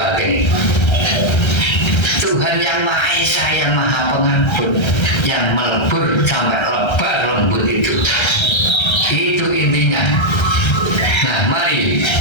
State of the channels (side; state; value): right; late; 1.3 ms